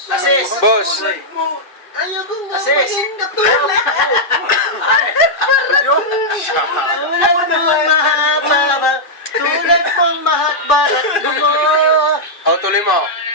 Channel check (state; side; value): late; right; 2.5 ms